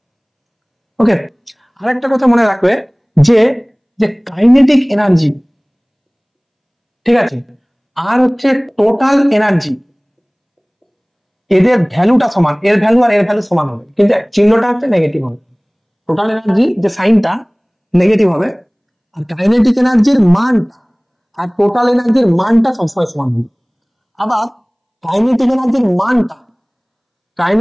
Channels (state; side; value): identical; both; correlation 1.00